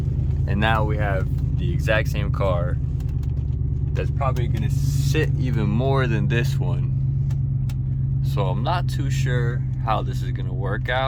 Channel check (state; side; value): identical; both; correlation 1.00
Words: And now we have the exact same car that's probably gonna sit even more than this one. So I'm not too sure how this is gonna work